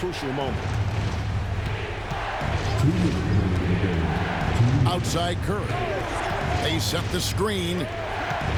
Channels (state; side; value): identical; both; correlation 1.00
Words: moment. Outside Curry. They set the screen.